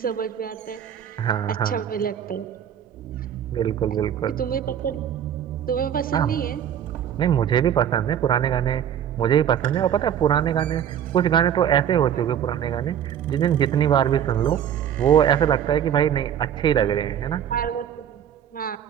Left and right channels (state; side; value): quieter; left; 9.4 dB